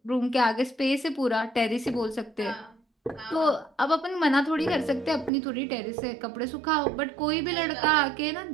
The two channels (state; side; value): drops out; left; at 5.3 s